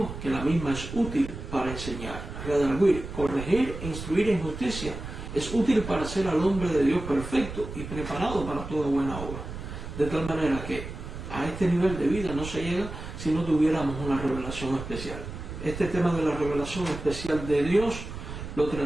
que la misma es útil para enseñar, redarguir, corregir e instruir en justicia. Es útil para hacer al hombre de Dios perfecto y preparado para toda buena obra. De tal manera que a este nivel de vida no se llega si no tuviéramos una revelación especial. Este tema de la revelación especial de Dios lo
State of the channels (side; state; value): right; noise; rumble, 9 dB below the sound